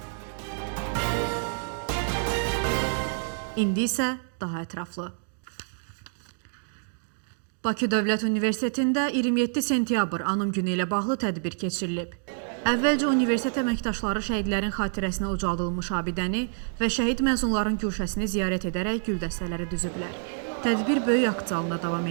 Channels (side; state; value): left; silent; digital silence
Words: İndi isə daha ətraflı. Bakı Dövlət Universitetində 27 sentyabr Anım günü ilə bağlı tədbir keçirilib. Əvvəlcə universitet əməkdaşları şəhidlərin xatirəsinə ucaldılmış abidəni və şəhid məzunların güşəsini ziyarət edərək gül dəstələri düzüblər. Tədbir böyük akt zalında davam